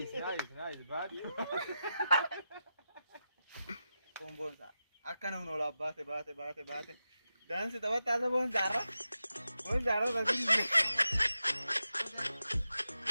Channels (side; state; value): both; inverted; correlation -0.90